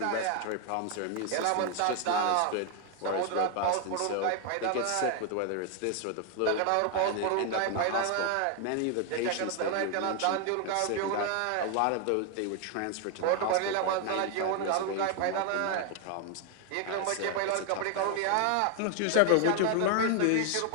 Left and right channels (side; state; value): both; different; correlation 0.00